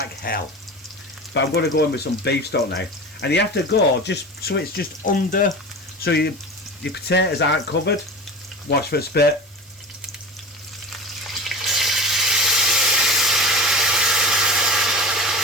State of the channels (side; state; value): both; normal; correlation 0.31